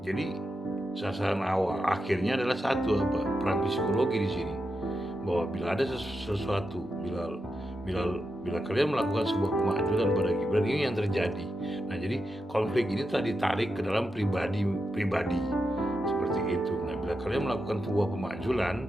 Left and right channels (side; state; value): both; normal; correlation 0.87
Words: jadi sasaran awal akhirnya adalah satu, perang psikologi di sini, bahwa bila ada sesuatu, bila kalian melakukan sebuah kemajuan pada Gibran, ini yang terjadi. Nah, jadi konflik ini telah ditarik ke dalam pribadi seperti itu. Nah, bila kalian melakukan sebuah